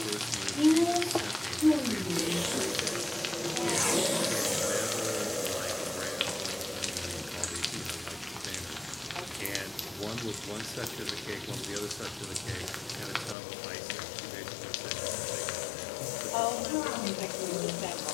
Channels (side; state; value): right; drops out; at 13.4 s